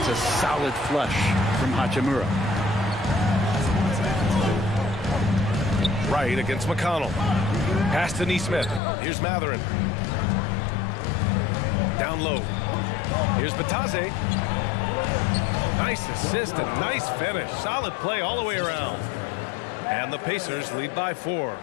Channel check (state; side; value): drops out; right; at 8.8 s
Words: a solid flush from Hachimura. Right against McConnell. Pass to Nesmith. Here's Matherin. Down low. Here's Bataze. Nice assist and nice finish. Solid play all the way around. And the Pacers lead by 4.